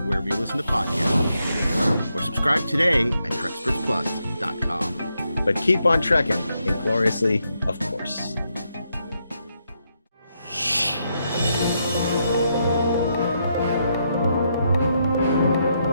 wherever you listen to podcasts. Or subscribe today at TrekspertsPlus.com. But keep on trekking, ingloriously, of course.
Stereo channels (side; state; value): both; inverted; correlation -0.80